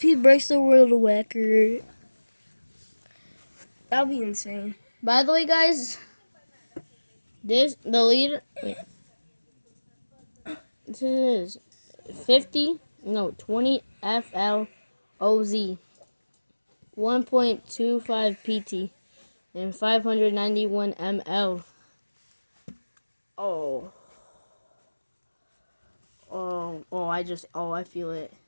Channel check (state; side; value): inverted; both; correlation -1.00